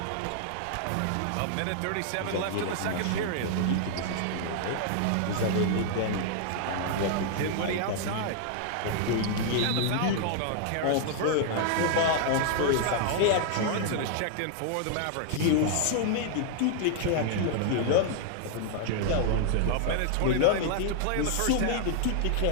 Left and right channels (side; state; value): both; different; correlation -0.01